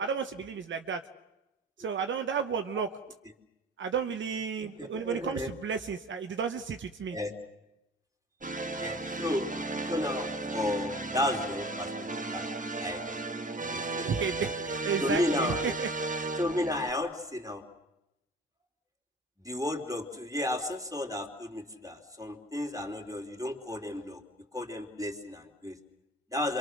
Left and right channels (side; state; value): both; normal; correlation 0.42